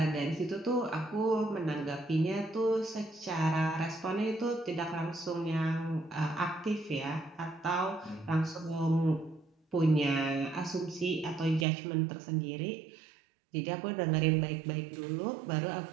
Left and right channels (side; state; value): left; drops out; at 11.7 s